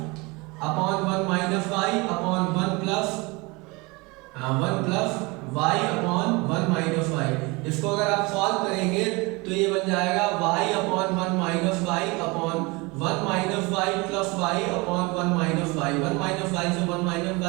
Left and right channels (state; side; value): quieter; left; 25.7 dB